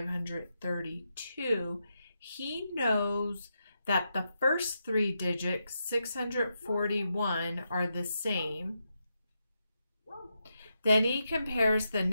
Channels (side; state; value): both; inverted; correlation -0.84